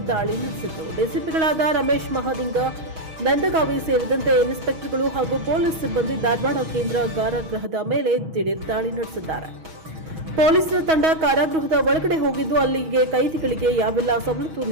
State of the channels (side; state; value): left; late; 6.3 ms